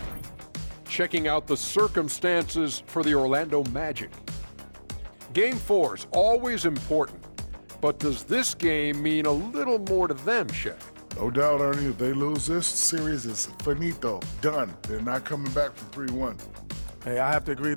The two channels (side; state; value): both; inverted; correlation -1.00